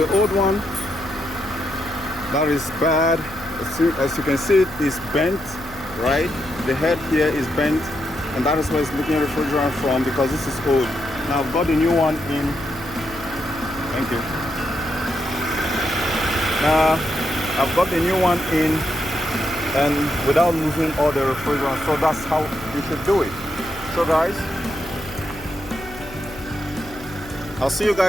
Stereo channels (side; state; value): left; noise; hum, 17 dB below the sound